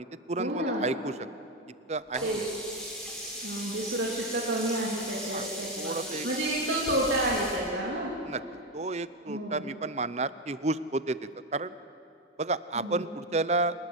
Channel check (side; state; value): both; normal; correlation 0.10